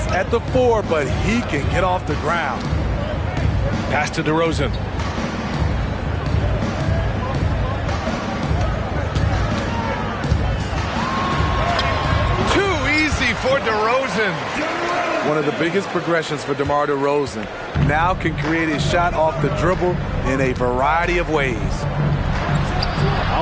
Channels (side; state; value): both; identical; correlation 1.00